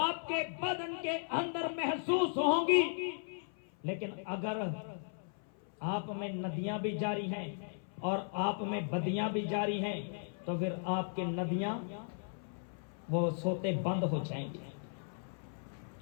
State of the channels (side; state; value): right; silent; 53 dB below the other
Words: आपके बदन के अंदर महसूस होंगी। लेकिन अगर आप में नदियां भी जारी हैं और आप में बदियां भी जारी हैं, तो फिर आपके नदियां वो सोते बंद हो जाएंगे।